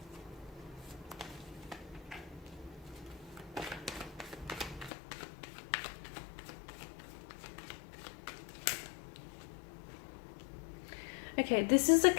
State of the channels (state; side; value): drops out; right; at 4.9 s